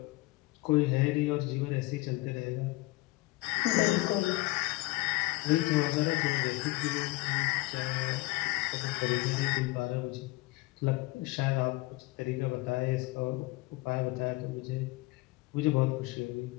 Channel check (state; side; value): quieter; right; 20.8 dB